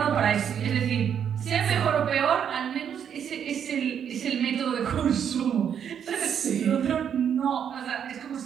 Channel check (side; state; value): left; quieter; 8.4 dB